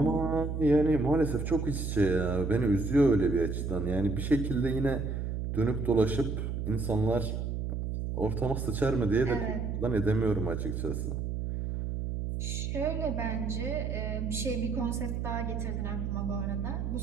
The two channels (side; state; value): right; noise; hum, 2 dB below the sound